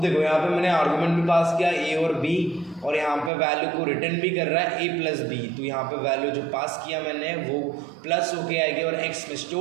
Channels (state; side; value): drops out; left; at 3.3 s